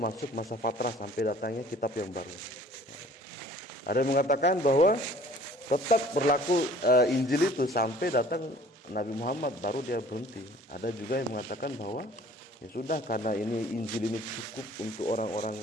masa fatrah sampai datangnya kitab yang baru. Ada yang mengatakan bahwa tetap berlaku Injil itu sampai datang Nabi Muhammad baru dia berhenti. Ada juga yang mengatakan bahwa ya sudah, karena ini Injil ini cukup untuk orang-orang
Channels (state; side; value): normal; both; correlation 0.51